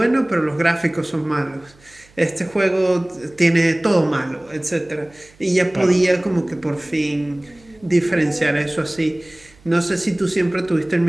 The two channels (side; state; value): right; noise; hum, 28 dB below the sound